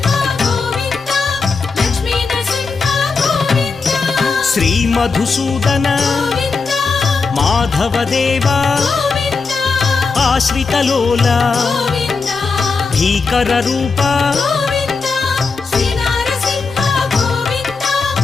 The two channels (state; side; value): quieter; right; 4.6 dB